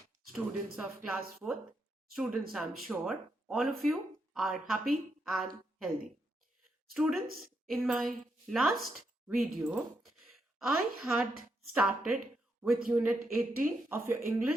students of class 4th. Students, I'm sure all of you are happy and healthy. Students, in my last video, I had started with Unit 18 of your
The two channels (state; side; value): normal; both; correlation 0.81